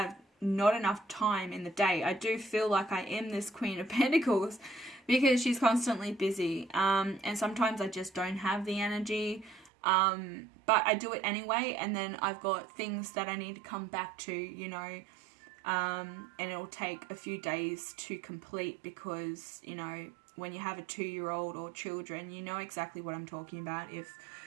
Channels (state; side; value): drops out; left; at 9.7 s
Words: not enough time in the day. I do feel like I am this Queen of Pentacles because she's constantly busy, and sometimes I just don't have the energy, but I do it anyway, and then I've got things that I need to come back to, you know, and it'll take a few days to complete, because, you know, when you have a 2-year-old or children, you know exactly what I'm talking about. If